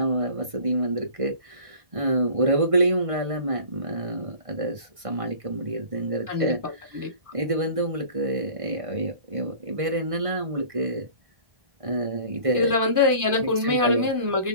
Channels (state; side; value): late; left; 1.6 ms